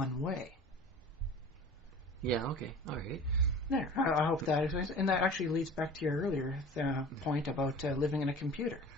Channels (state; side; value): normal; both; correlation 0.41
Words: way. Yeah, okay, alright. There, I hope that explains. And that actually leads back to your earlier point about living in a computer.